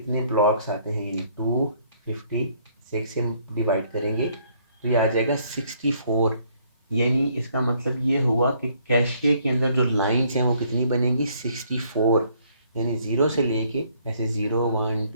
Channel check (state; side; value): inverted; both; correlation -0.65